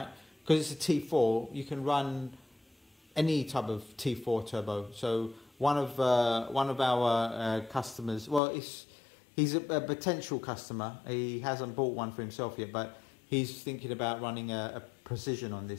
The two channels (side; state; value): right; drops out; at 8.4 s